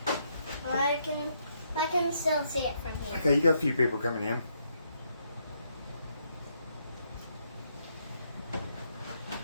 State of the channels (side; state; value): both; inverted; correlation -0.75